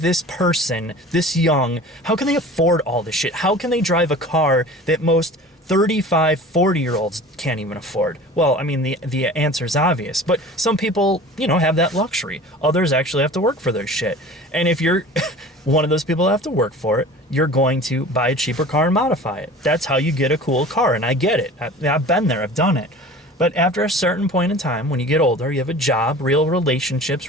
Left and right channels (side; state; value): both; normal; correlation 0.40